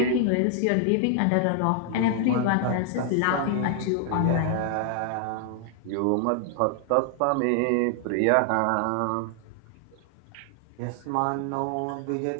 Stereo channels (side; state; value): both; different; correlation 0.00